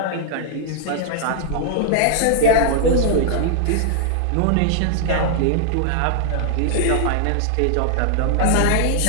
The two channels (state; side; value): different; both; correlation -0.01